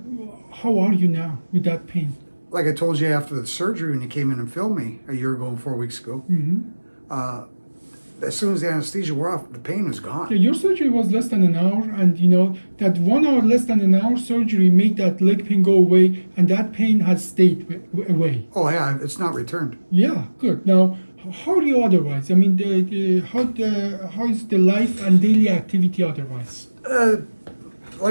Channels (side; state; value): both; inverted; correlation -1.00